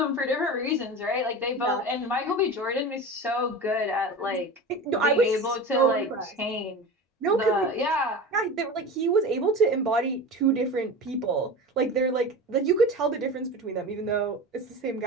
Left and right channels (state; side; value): normal; both; correlation 0.30